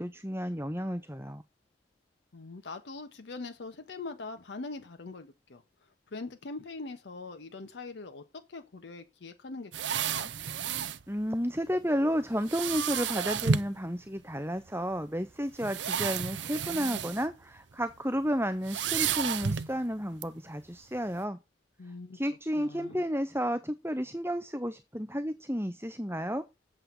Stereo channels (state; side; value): normal; both; correlation 0.69